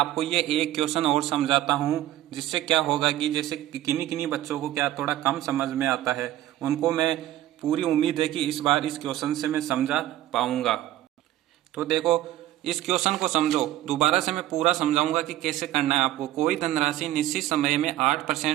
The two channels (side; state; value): left; quieter; 14.1 dB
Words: ये एक क्वेश्चन और समझाता हूँ, जिससे क्या होगा कि जैसे किन्हीं किन्हीं बच्चों को क्या थोड़ा कम समझ में आता है, उनको मैं पूरी उम्मीद है कि इस बार इस क्वेश्चन से मैं समझा पाऊंगा। तो देखो इस क्वेश्चन को समझो, दोबारा से मैं पूरा समझाऊंगा कि कैसे करना है आपको। कोई धनराशि निश्चित समय में